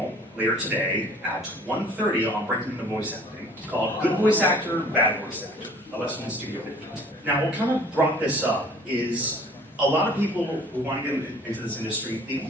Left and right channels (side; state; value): both; normal; correlation 0.52